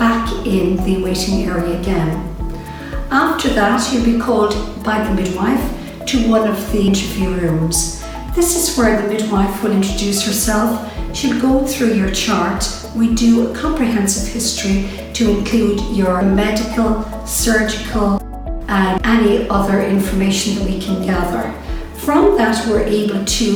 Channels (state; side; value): identical; both; correlation 1.00